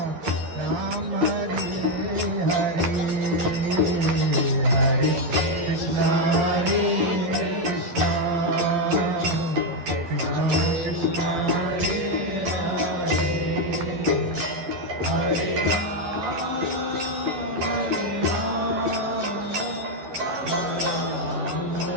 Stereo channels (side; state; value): left; late; 11 ms